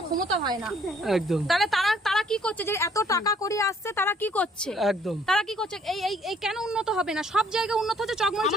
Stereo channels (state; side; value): normal; both; correlation 0.62